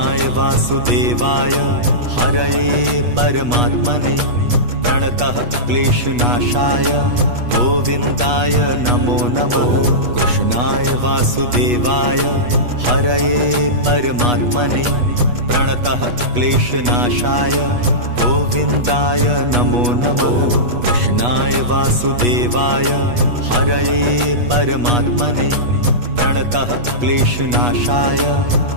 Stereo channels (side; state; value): left; late; 8.2 ms